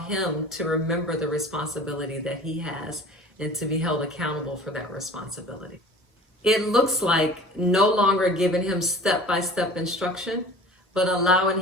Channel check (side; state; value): both; normal; correlation 0.43